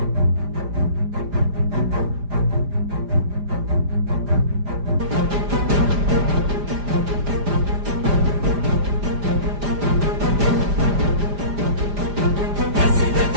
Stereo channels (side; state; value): left; late; 4.9 ms